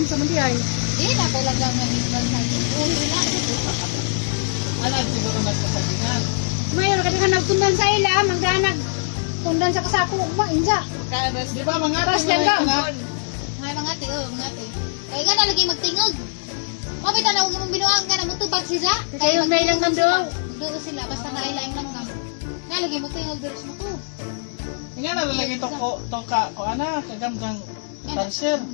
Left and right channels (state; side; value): silent; right; digital silence